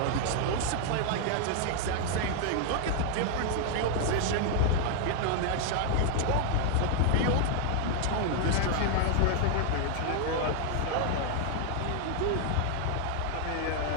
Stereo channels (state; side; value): different; both; correlation 0.00